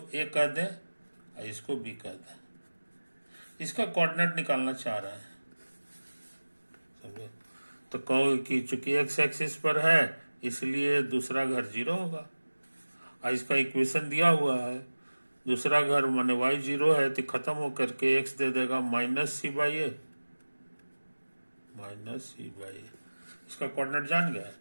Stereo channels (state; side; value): inverted; both; correlation -1.00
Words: ए कह दें और इसको बी कह दें। इसका कोऑर्डिनेट निकालना चाह रहे हैं, समझे। तो कहो कि चूंकि एक्स एक्सिस पर है इसलिए दूसरा घर 0 होगा, और इसका इक्वेशन दिया हुआ है, दूसरा घर माने y 0 है तो खत्म होकर के x दे देगा -c/a, -c/a। इसका कोऑर्डिनेट जान गया।